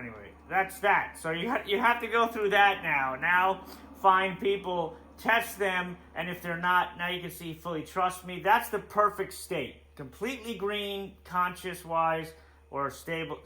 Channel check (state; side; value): identical; both; correlation 1.00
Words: that's that. So you have to go through that now. Now, find people, test them, and if they're not, now you can see fully trust me. That's the perfect state. Completely green, conscious-wise, or